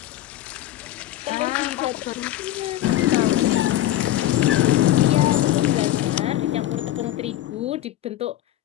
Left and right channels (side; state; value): right; quieter; 13.6 dB